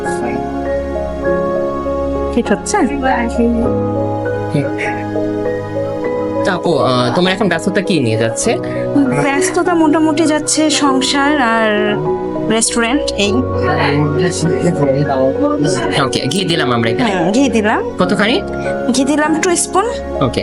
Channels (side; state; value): both; identical; correlation 1.00